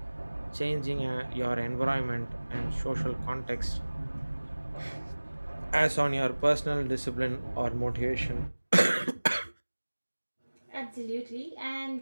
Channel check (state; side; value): inverted; both; correlation -1.00